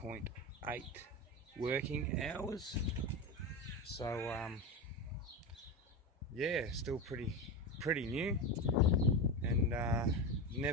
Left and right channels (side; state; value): both; normal; correlation 0.19